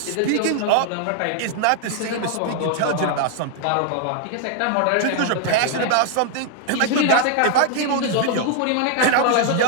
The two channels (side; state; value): both; different; correlation 0.00